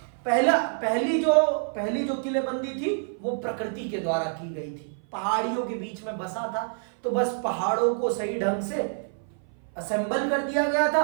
पहली जो किलेबंदी थी वो प्रकृति के द्वारा की गई थी। पहाड़ियों के बीच में बसा था, तो बस पहाड़ों को सही ढंग से असेंबल कर दिया गया था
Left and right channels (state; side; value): silent; left; 56 dB below the other